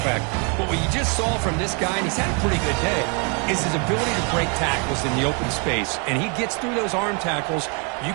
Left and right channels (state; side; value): quieter; left; 35.9 dB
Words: back. But what you just saw from this guy, and he's had a pretty good day, is his ability to break tackles in the open space. And he gets through those arm tackles. You